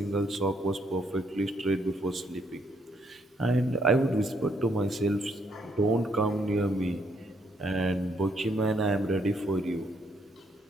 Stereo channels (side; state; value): both; normal; correlation 0.72